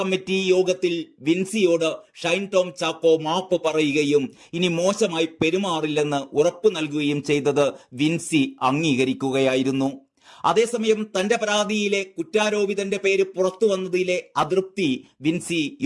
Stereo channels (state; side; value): identical; both; correlation 1.00